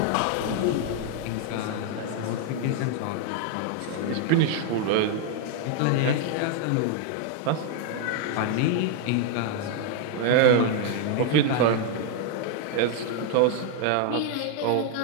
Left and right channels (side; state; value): both; different; correlation 0.00